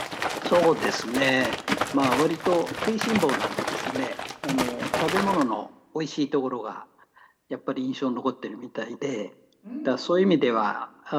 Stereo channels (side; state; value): both; identical; correlation 1.00